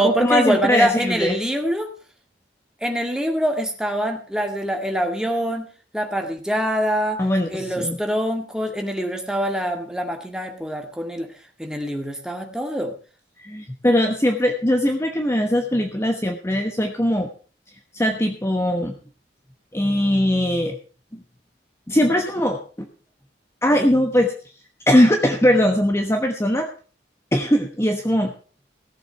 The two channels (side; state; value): both; normal; correlation 0.78